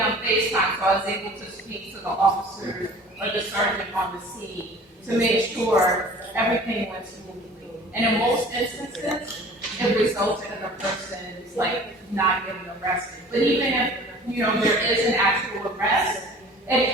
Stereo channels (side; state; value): both; normal; correlation 0.46